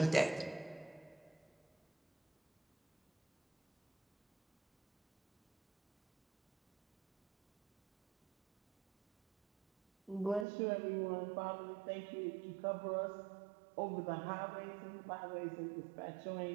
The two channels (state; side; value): drops out; left; at 10.5 s